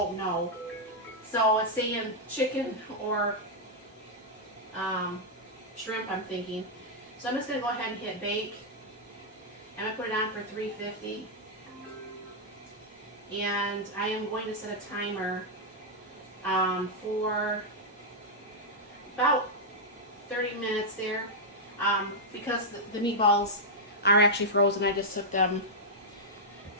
know. So, it's saying chicken or shrimp, I'm thinking. So, I'm just going to go ahead and hit bake. I'm going to put it on for 350. And I am going to set a timer for about 30 minutes there. Because the meatballs are actually frozen. I just took them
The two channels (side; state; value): both; normal; correlation -0.05